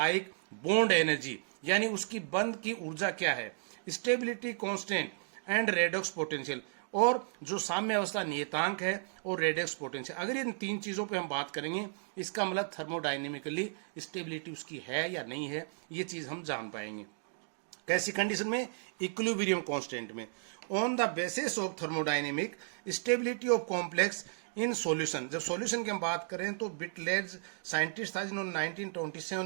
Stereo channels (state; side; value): silent; left; digital silence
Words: bond energy. यानी उसकी बंध की ऊर्जा क्या है, stability constant and redox potential, और जो साम्य अवस्था नियतांक है और रेडॉक्स पोटेंशियल। अगर इन तीन चीजों पे हम बात करेंगे, इसका मतलब थर्मोडाइनेमिकली स्टेबिलिटी उसकी है या नहीं है, ये चीज हम जान पाएंगे। कैसी कंडीशन में? इक्विलिब्रियम कांस्टेंट में। On the basis of thermodynamic stability of complex in solution. जब सॉल्यूशन की हम बात करें तो बिटलेज साइंटिस्ट था जिन्होंने